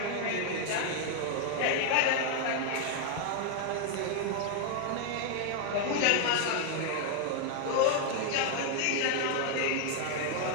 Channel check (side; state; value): both; different; correlation 0.00